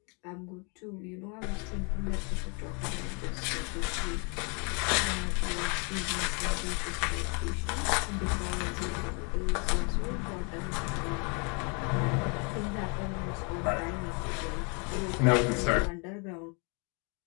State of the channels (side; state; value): right; quieter; 34.9 dB